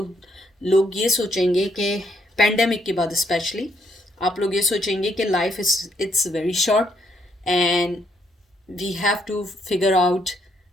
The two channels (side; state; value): both; normal; correlation 0.73